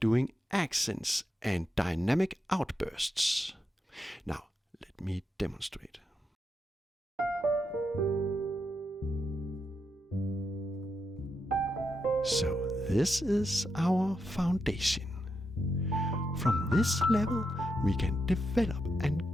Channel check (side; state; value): both; normal; correlation 0.84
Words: accents and dynamic outbursts. Now, let me demonstrate. So this is our foundation. From this level, we can develop and